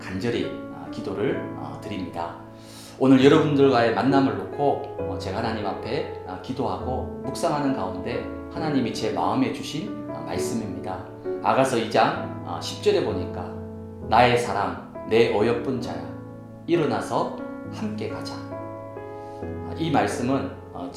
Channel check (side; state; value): both; identical; correlation 1.00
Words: 기도를 드립니다. 오늘 여러분들과의 만남을 놓고 제가 하나님 앞에 기도하고 묵상하는 가운데 하나님이 제 마음에 주신 말씀입니다. 아가서 2장 10절에 보니까 나의 사랑 내 어여쁜 자야 일어나서 함께 가자. 이 말씀은